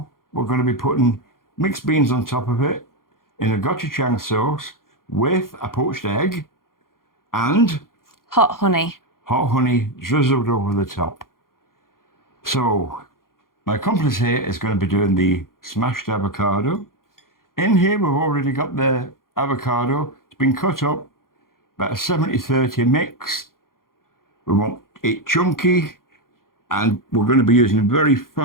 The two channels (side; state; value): right; late; 0.91 ms